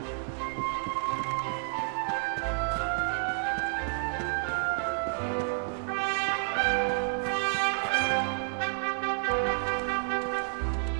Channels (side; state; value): left; silent; 58 dB below the other